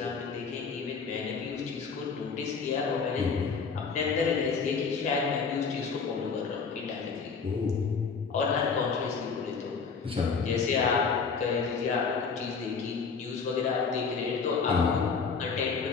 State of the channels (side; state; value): right; quieter; 5.3 dB